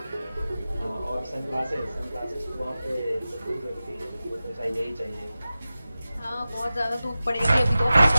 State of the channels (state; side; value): inverted; both; correlation -0.95